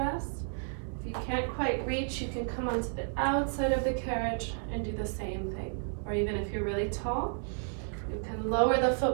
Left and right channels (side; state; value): left; silent; 56 dB below the other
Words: If you can't quite reach, you can come onto the outside of the carriage and do the same thing. Or even if you're really tall, you can lower the